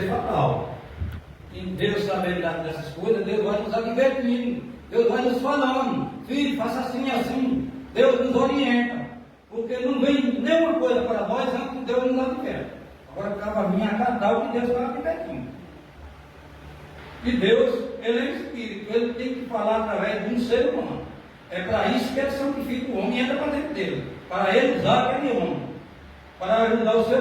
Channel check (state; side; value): identical; both; correlation 1.00